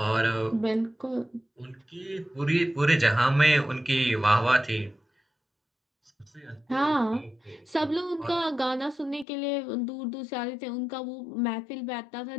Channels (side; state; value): right; drops out; at 9.2 s